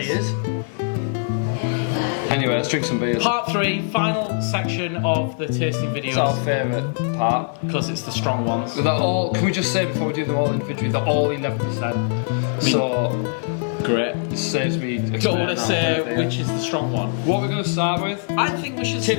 Anyway, let's drink some beers. Part 3, final section of the tasting videos. It's our favourite part. Because it's the strong ones. They're all, can we just say before we do them all individually, they're all 11%. So, great. it saves me. Don't want to say which is the strong one. What we're going to start with? I think we should.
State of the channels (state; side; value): silent; right; digital silence